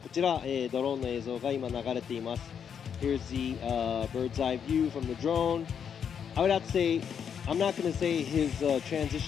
ちら、ドローンの映像が今流れています。Here's the bird's eye view from the drone. I would have to say, I'm not going to say his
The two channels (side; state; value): right; quieter; 7.7 dB